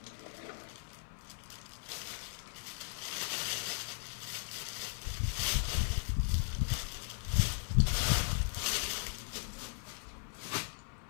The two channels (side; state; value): right; silent; 53 dB below the other